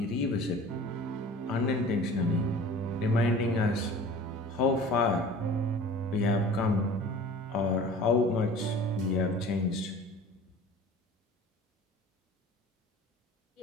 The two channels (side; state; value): both; normal; correlation 0.43